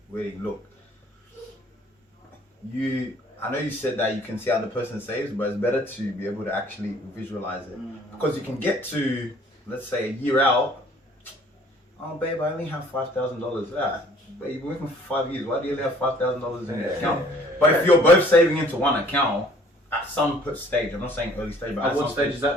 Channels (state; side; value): normal; both; correlation 0.56